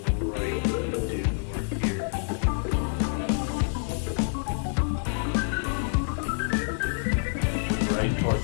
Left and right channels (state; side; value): silent; right; 60 dB below the other